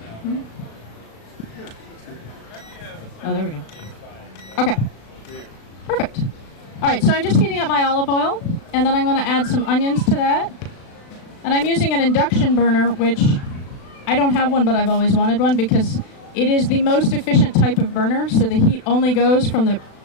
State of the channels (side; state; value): right; late; 36 ms